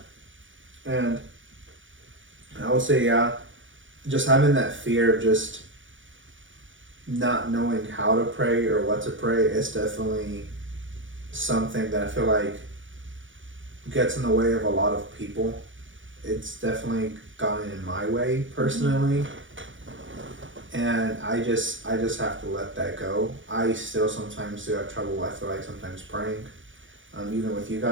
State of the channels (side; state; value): left; late; 0.56 ms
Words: And I would say, just having that fear of just not knowing how to pray or what to pray is definitely something that I feel like gets in the way of a lot of people. It's definitely gotten in my way personally. And I just have to let that go. I still sometimes do have trouble, I feel like, sometimes praying, even with you